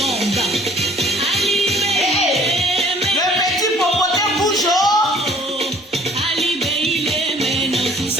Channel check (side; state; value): both; normal; correlation 0.54